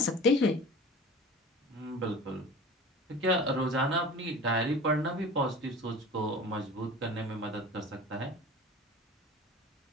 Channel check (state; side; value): normal; both; correlation 0.38